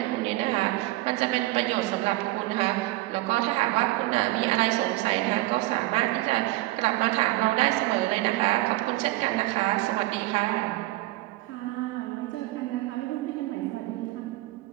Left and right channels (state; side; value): quieter; left; 18.9 dB